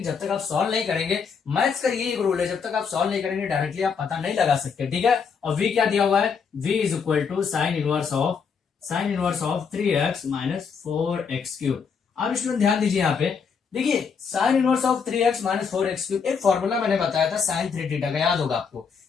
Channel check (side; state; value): right; quieter; 6.0 dB